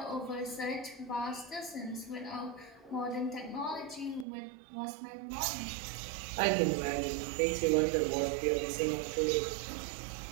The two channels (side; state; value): left; drops out; at 4.2 s